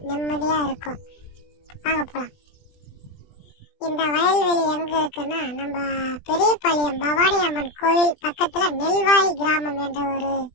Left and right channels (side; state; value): right; late; 20 ms